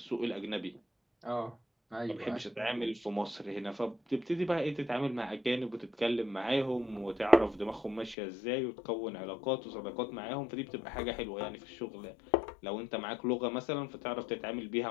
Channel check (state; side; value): drops out; right; at 8.2 s